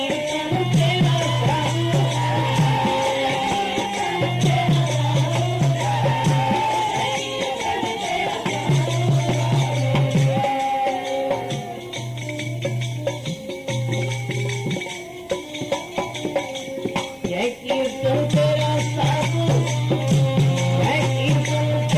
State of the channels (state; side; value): identical; both; correlation 1.00